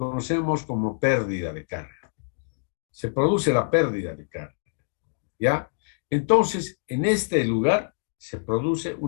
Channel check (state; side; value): silent; right; digital silence